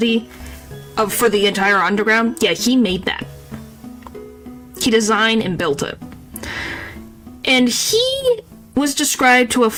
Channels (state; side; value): identical; both; correlation 1.00